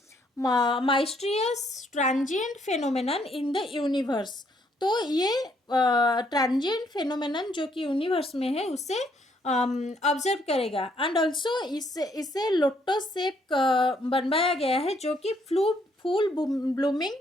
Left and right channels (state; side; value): normal; both; correlation 0.70